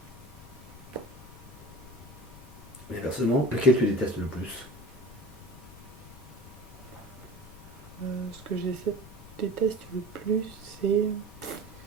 Et personnellement, lequel tu détestes le plus? Ce que déteste le plus, c'est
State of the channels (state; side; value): noise; left; rumble, 17 dB below the sound